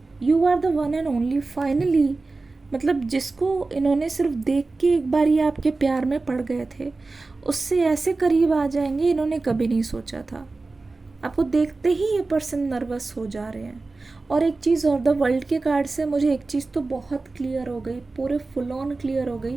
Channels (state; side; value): quieter; left; 3.6 dB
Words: one and only. Finally, मतलब जिसको इन्होंने सिर्फ देख के एक बार ये आपके प्यार में पड़ गए थे, उससे ऐसे करीब आ जाएंगे इन्होंने कभी नहीं सोचा था। आपको देखते ही ये पर्सन नर्वस हो जा रहे हैं। और एक चीज़ और, द वर्ल्ड के कार्ड से मुझे एक चीज़ तो बहुत क्लियर हो गई, पूरे फुल ऑन क्लियर हो गई।